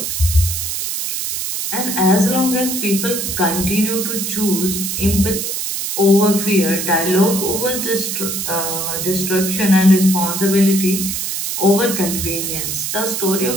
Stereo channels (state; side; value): noise; right; hiss, 3 dB below the sound